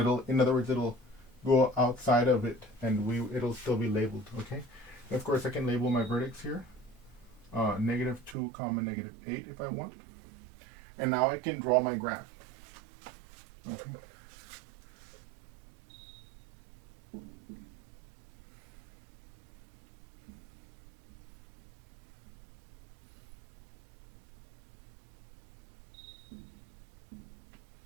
in other words, it'll go outside of it, and it'll still be labeled. Okay. And of course, I can label my vertex here, -2, -8 if I want. And now I can draw my graph. Okay.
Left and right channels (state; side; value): drops out; left; at 8.3 s